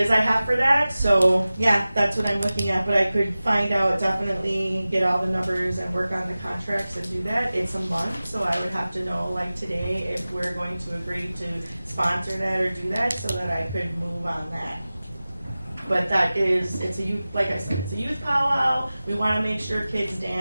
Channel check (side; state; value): both; inverted; correlation -0.97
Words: I have for that. So yeah, that's what I'm looking at, but I could find out, definitely get all the numbers and work on the contracts and do that. It's a month, so I would have to know like today if we're going to agree to sponsor that or do that, so that I could move on that. But it's a youth, like I said, it's a youth powwow. We want to make sure kids